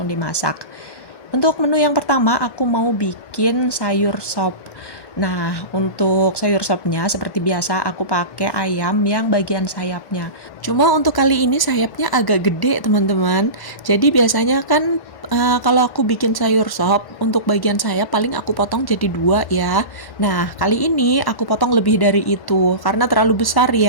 dimasak. Untuk menu yang pertama, aku mau bikin sayur sop. Nah, untuk sayur sopnya seperti biasa aku pakai ayam yang bagian sayapnya. Cuma untuk kali ini sayapnya agak gede, teman-teman. Jadi biasanya kan kalau aku bikin sayur sop, untuk bagian sayap paling aku potong jadi dua ya. Nah, kali ini aku potong lebih dari itu karena terlalu besar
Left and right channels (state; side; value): late; right; 1.1 ms